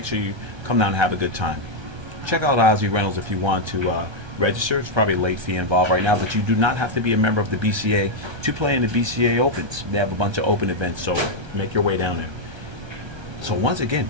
sure you come down and have a good time. Check out Ozzy Reynolds if you want to register. It's probably a late fee involved right now, but you do not have to be a member of the BCA to play in the BCA Opens. They have a bunch of open events, so make your way down there. So once again,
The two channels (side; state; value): left; late; 1.3 ms